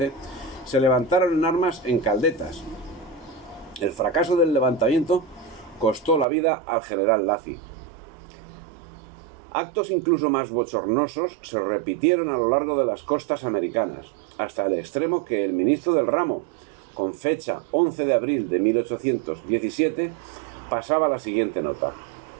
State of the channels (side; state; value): left; drops out; at 6.2 s